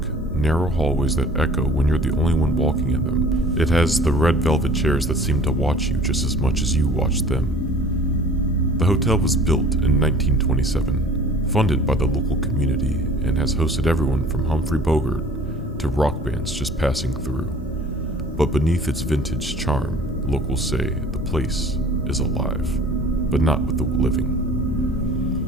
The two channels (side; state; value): both; normal; correlation 0.48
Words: narrow hallways that echo when you're the only one walking in them. It has the red velvet chairs that seem to watch you just as much as you watch them. The hotel was built in 1927, funded by the local community, and has hosted everyone from Humphrey Bogart to rock bands just passing through. But beneath its vintage charm, locals say the place is alive, but not with the living.